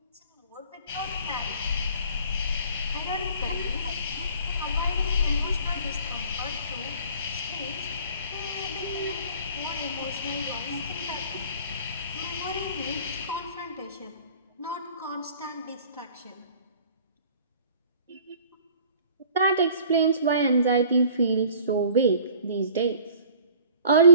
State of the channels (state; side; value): inverted; both; correlation -0.49